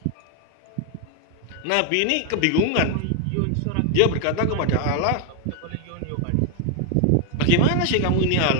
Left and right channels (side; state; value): both; different; correlation 0.01